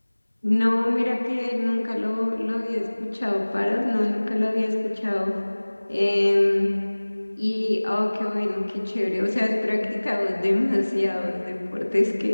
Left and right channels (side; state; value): both; inverted; correlation -1.00